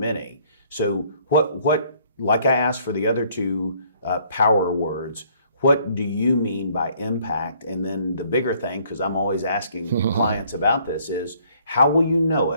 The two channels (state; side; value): inverted; both; correlation -0.62